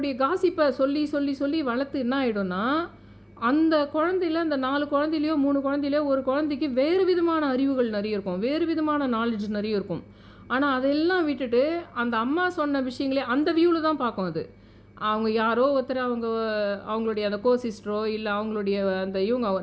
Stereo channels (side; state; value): both; identical; correlation 1.00